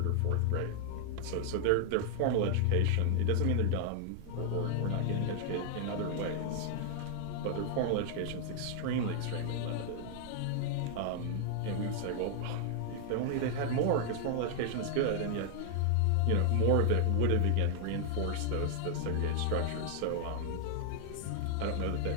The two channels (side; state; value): both; different; correlation 0.00